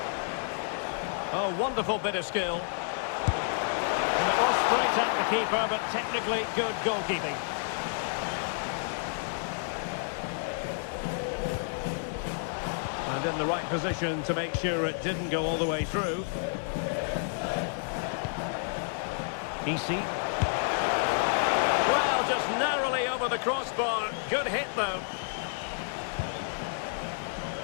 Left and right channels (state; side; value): silent; right; 58 dB below the other